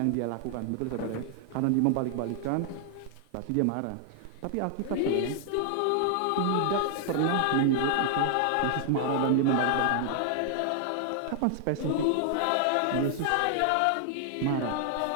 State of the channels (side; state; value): both; different; correlation 0.00